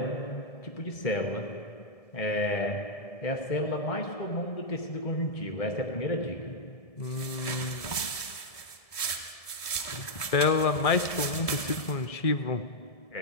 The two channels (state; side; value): late; right; 1.7 ms